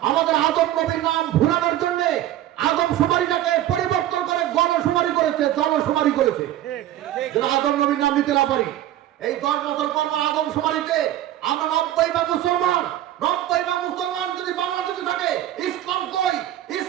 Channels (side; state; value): left; quieter; 13.1 dB